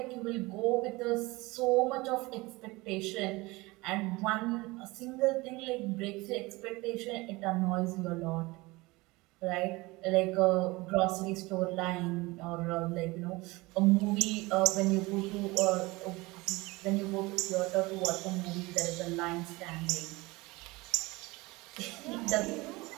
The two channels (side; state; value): left; quieter; 22.5 dB